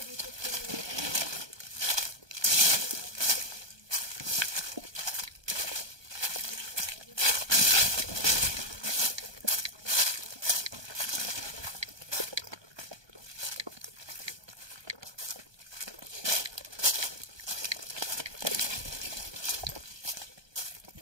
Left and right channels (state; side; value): late; left; 1.2 ms